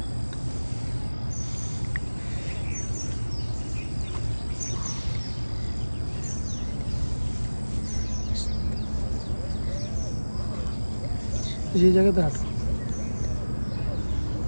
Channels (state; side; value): inverted; both; correlation -1.00